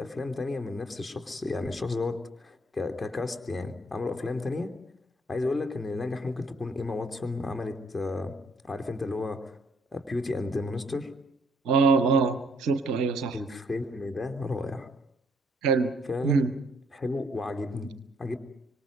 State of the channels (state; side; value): normal; both; correlation 0.66